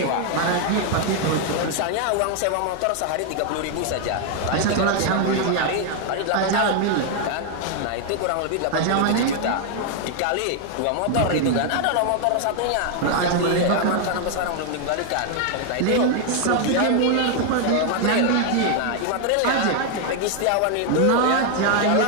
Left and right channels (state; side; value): different; both; correlation 0.01